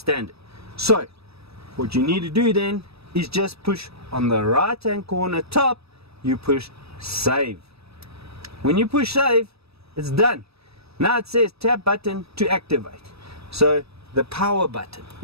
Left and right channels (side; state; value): left; late; 0.78 ms